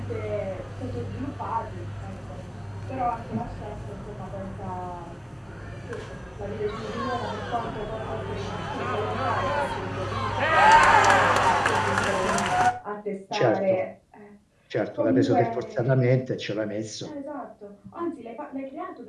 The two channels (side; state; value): both; identical; correlation 1.00